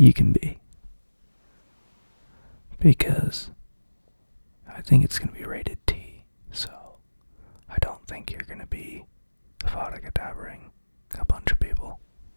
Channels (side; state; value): both; inverted; correlation -1.00